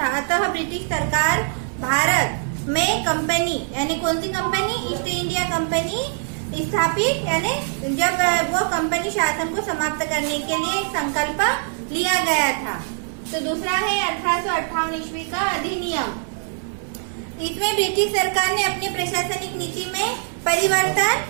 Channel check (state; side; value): silent; left; 60 dB below the other